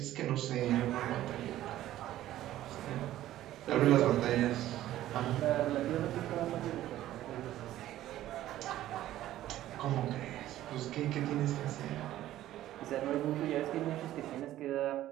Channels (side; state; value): left; quieter; 13.8 dB